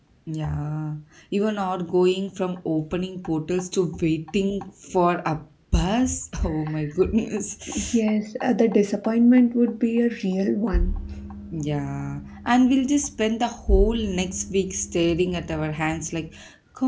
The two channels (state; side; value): identical; both; correlation 1.00